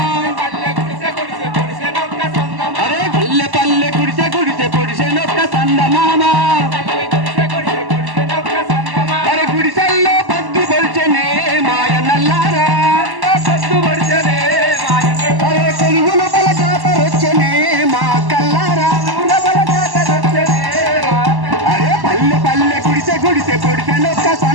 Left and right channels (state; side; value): late; left; 1.1 ms